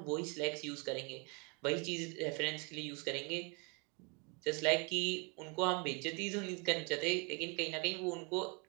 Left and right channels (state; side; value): quieter; left; 32.4 dB